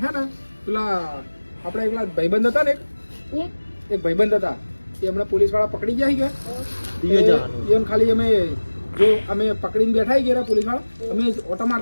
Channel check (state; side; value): inverted; both; correlation -1.00